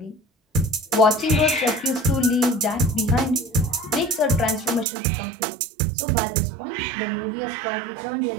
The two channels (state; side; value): drops out; left; at 4.9 s